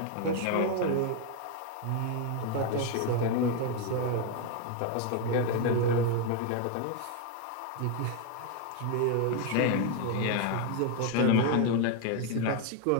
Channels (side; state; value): both; different; correlation 0.01